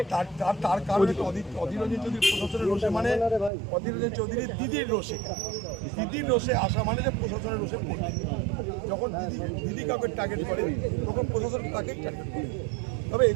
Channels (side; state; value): left; drops out; at 3.5 s